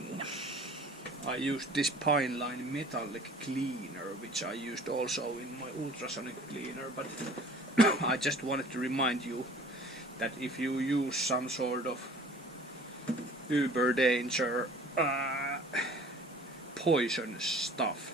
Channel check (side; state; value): both; normal; correlation 0.48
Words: I used this Pine Line metallic cleaner, which I used also in my ultrasonic cleaner, but I just wanted to remind you that if you use some sort of uber danger poison stuff,